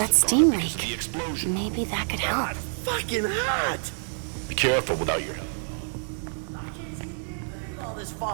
have steam gone up because of the explosion. Maybe that could help. Fucking hot! Be careful without your helmet on. I can't see a damn thing with all this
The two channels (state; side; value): silent; left; digital silence